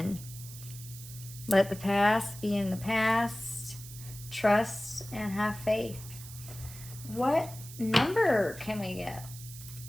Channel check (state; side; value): noise; right; hiss, 14 dB below the sound